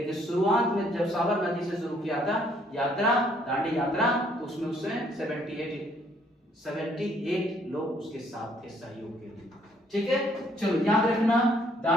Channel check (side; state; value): both; normal; correlation 0.65